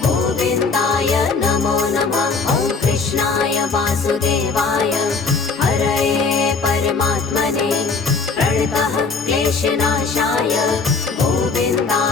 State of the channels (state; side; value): quieter; right; 4.6 dB